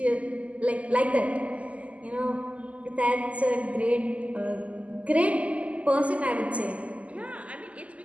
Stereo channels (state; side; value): late; left; 0.067 ms